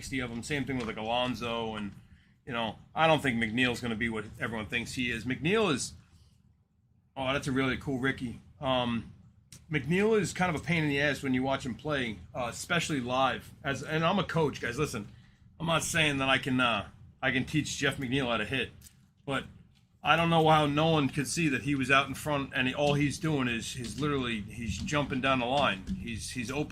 of them. Same thing with like Alonso. And, you know, I don't think McNeil's going to be what everyone thinks he is. McNeil is, oh, that's a really cool Ricky. McNeil is kind of a pain in the ass when you watch him play, especially live. And I'm a coach, guys. Listen, I'm not saying that I can teach Jeff McNeil how to hit. But I don't know how no one could see that he was out in front and all he's doing is he's jumping down the line. He's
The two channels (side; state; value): both; identical; correlation 1.00